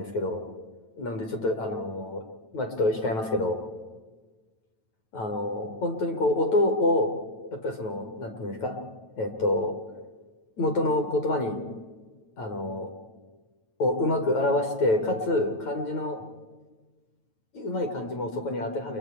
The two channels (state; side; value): late; right; 9.1 ms